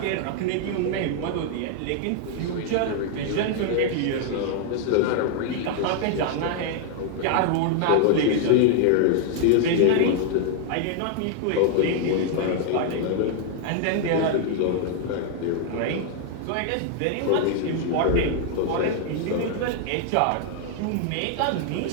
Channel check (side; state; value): both; different; correlation 0.00